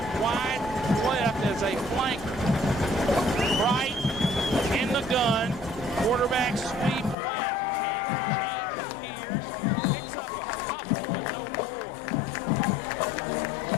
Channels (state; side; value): drops out; right; at 7.2 s